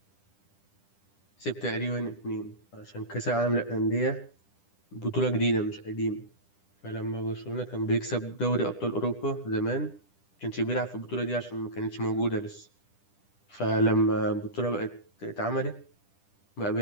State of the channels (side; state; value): right; late; 10 ms